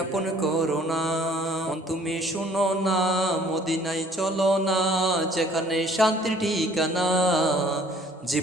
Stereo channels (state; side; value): normal; both; correlation 0.57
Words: আপন করো না। মন তুমি শুনো না, মদিনায় চলো না, যেখানে শান্তির ঠিকানা।